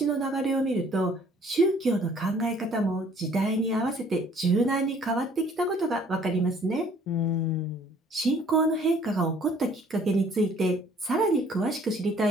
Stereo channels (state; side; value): normal; both; correlation 0.58